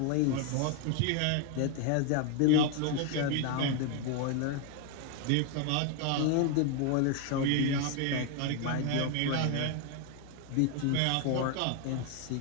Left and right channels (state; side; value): different; both; correlation 0.01